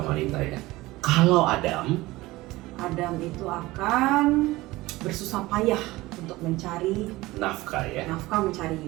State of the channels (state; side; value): quieter; left; 19.3 dB